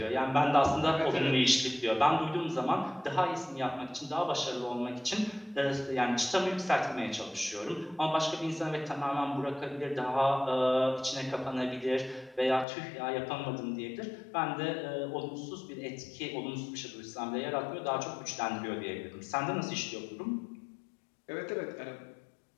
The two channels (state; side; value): drops out; right; at 12.7 s